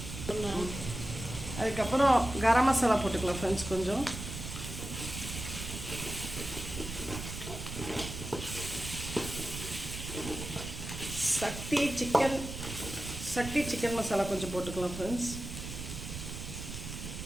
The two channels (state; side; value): noise; right; rumble, 8 dB below the sound